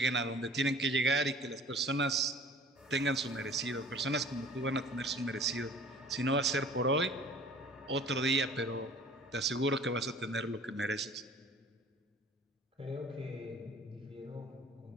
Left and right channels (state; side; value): normal; both; correlation 0.48